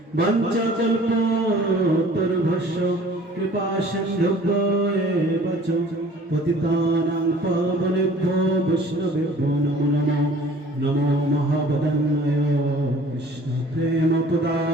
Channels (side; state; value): both; normal; correlation 0.50